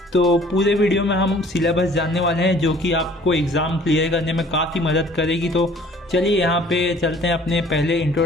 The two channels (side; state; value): both; normal; correlation 0.54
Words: तो पूरे वीडियो में हम सिलेबस जानने वाले हैं, जो कि आपको एग्ज़ाम क्लियर करने में काफ़ी मदद करेगी। तो चलिए यहाँ पे चलते हैं अपने पहले